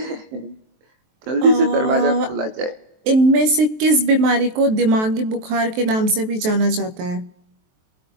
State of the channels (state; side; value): late; left; 23 ms